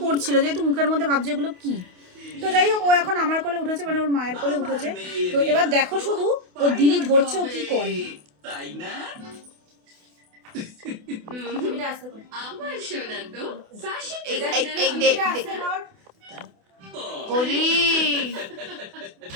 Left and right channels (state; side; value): late; left; 28 ms